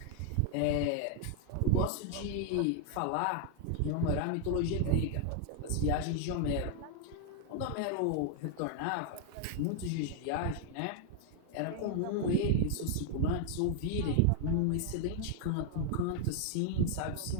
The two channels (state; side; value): different; both; correlation 0.00